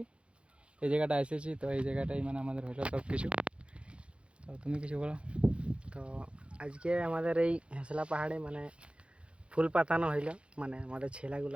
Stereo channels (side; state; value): left; late; 0.059 ms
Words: এই জায়গাটা এসেছি। তো এই জায়গাটাই মানে আমাদের হলো সব কিছু। তো তুমি কিছু বলো। তো আজকে আমাদের এই হেঁসলা পাহাড়ে মানে ফুল পাতানো হইল, মানে আমাদের